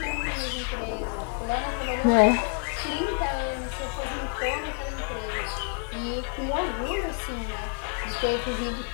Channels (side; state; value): right; quieter; 36.1 dB